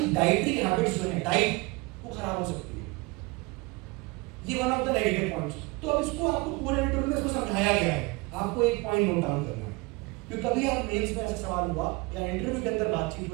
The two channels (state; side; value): quieter; left; 25.0 dB